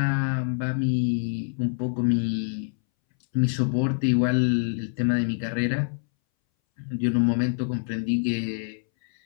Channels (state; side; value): silent; right; 61 dB below the other